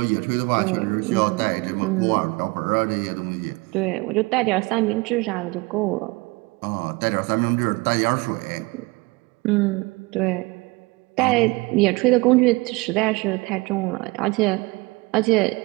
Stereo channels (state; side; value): quieter; left; 25.1 dB